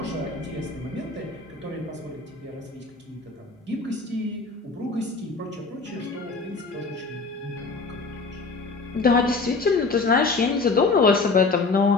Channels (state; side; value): quieter; right; 4.0 dB